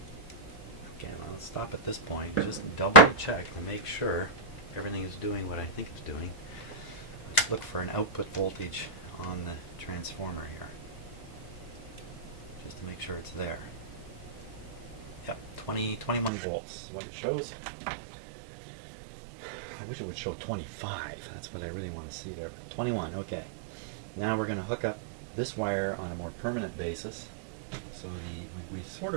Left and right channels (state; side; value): drops out; left; at 16.3 s